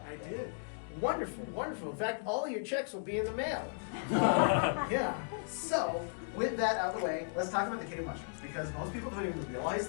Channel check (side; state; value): right; silent; digital silence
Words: there? I did. Wonderful, wonderful. In fact, all of your checks will be in the mail. Yeah. So, with that out of the way, let's talk about the cave mushrooms, because most people don't even realize